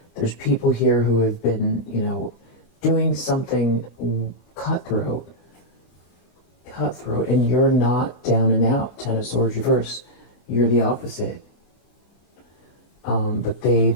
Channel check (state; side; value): late; right; 24 ms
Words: There's people here who have been, you know, doing something cutthroat, and you're not down and out. 10 of Swords reverse. You're the opposite. But